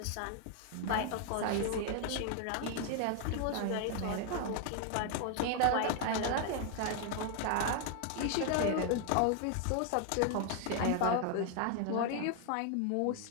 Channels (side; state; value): both; different; correlation 0.00